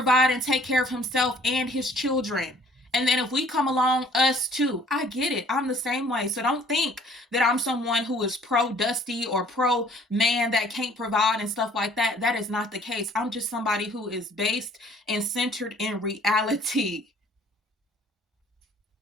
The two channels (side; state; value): both; normal; correlation 0.56